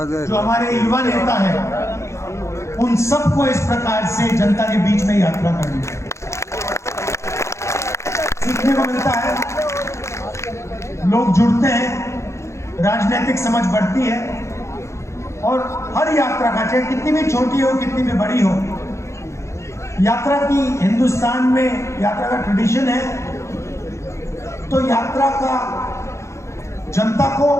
हमारे युवा नेता हैं उन सबको इस प्रकार से जनता के बीच में यात्रा करनी चाहिए। सीखने को मिलता है, लोग जुड़ते हैं, राजनीतिक समझ बढ़ती है और हर यात्रा का, चाहे कितनी भी छोटी हो कितनी भी बड़ी हो, यात्रा की हिंदुस्तान में यात्रा का ट्रेडिशन है। तो यात्रा का जनता को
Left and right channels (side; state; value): right; late; 0.14 ms